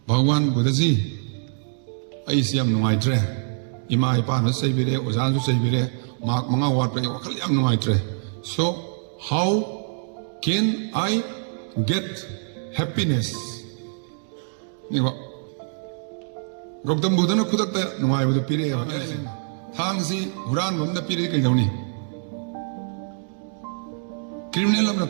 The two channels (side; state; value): left; silent; digital silence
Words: Bhagwan Buddha ji ai siam nungai tre. Ima ipa na sai bire ozan su sai bire mak manga wat pe wakhal yam nungai tre. So how can I get happiness? Ni ba Gautam Buddha na khudak ta nungai bu pire ya thang si huran bam da pire kai dauni criminal am na